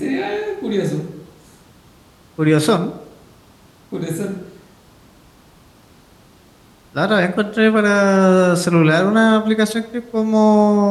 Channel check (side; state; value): both; identical; correlation 1.00